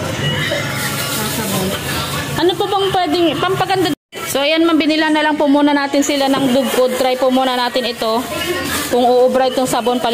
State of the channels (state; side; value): identical; both; correlation 1.00